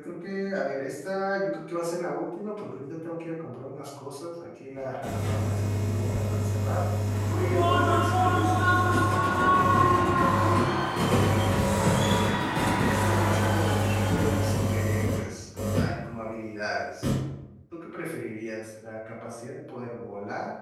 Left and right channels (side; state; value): both; identical; correlation 1.00